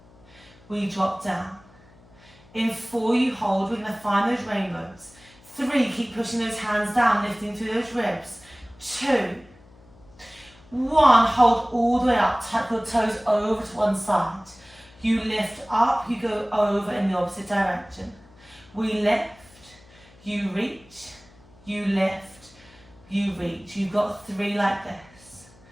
We drop down. In 4, you hold. We're going to find those rainbows. 3, keep pushing those hands down, lifting through those ribs. 2, 1, hold all the way up. Tuck your toes over to one side. You lift up, you go over in the opposite direction. We lift, you reach, you lift, you reach. You've got 3 like this.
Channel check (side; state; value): left; noise; hum, 26 dB below the sound